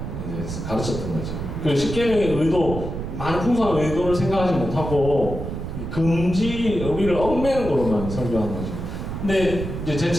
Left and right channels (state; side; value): noise; right; rumble, 6 dB below the sound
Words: 이제 가르쳤던 거죠. 그 십계명의 의도, 많은 풍성한 의도를 생각하지 못하고 금지 우리를 얽매는 거로만 설교한 거죠. 근데 이제 제